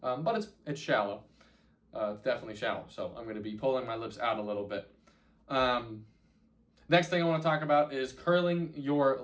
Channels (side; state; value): both; identical; correlation 1.00